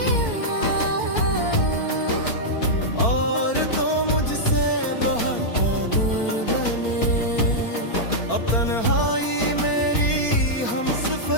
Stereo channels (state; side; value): late; right; 4.4 ms